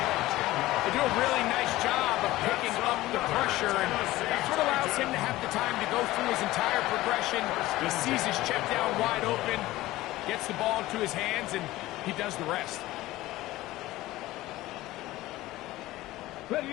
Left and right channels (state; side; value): quieter; right; 17.2 dB